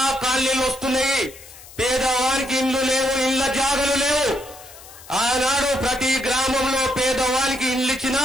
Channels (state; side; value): noise; left; hiss, 19 dB below the sound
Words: కాలనీలు వస్తున్నాయి. పేదవానికి ఇండ్లు లేవు, ఇళ్ల జాగలు లేవు. ఆనాడు ప్రతి గ్రామంలో పేదవానికి ఇండ్లు ఇచ్చినా,